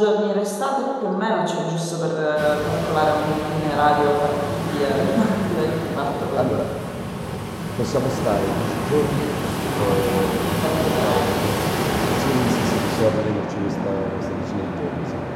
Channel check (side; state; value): both; identical; correlation 1.00